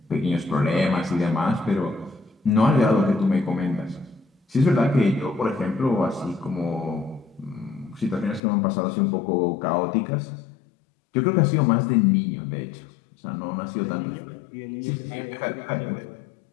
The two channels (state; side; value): drops out; right; at 8.4 s